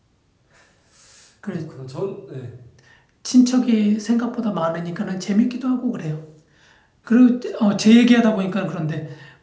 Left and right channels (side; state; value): both; identical; correlation 1.00